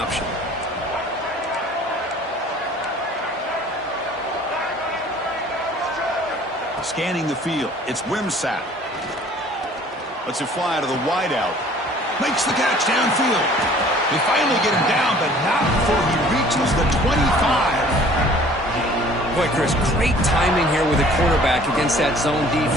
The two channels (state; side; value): normal; both; correlation 0.52